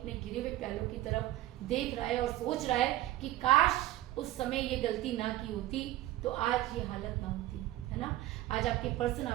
गिरे हुए प्यालों की तरफ देख रहा है और सोच रहा है कि काश उस समय ये गलती ना की होती तो आज ये हालत ना होती, है ना। आज आपके पर्सन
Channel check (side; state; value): left; quieter; 15.2 dB